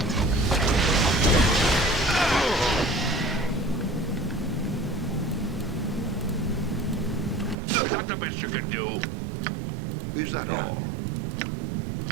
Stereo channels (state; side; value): drops out; left; at 7.6 s